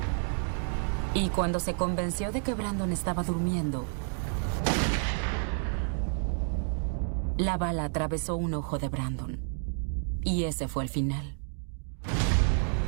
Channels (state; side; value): silent; left; 58 dB below the other